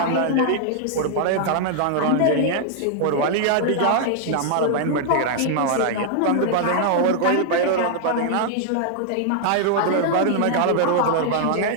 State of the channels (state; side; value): different; both; correlation -0.01